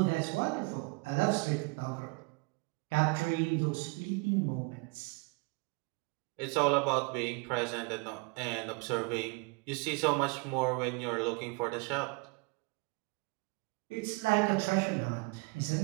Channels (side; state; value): left; quieter; 30.4 dB